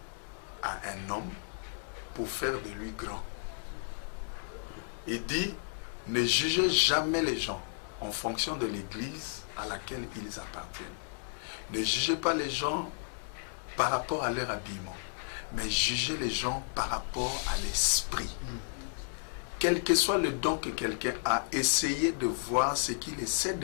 à un homme pour faire de lui grand. » Il dit « Ne jugez jamais les gens en fonction de l'église à laquelle ils appartiennent. Ne jugez pas les gens par rapport à leur habillement, mais jugez les gens par rapport à l'esprit. Quel que soit le don que quelqu'un a, essayez de voir ce qu'il essaie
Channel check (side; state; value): right; silent; digital silence